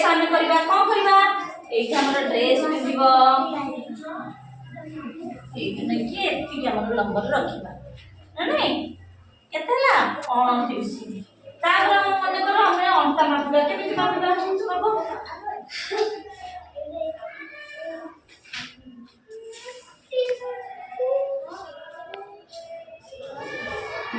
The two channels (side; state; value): both; identical; correlation 1.00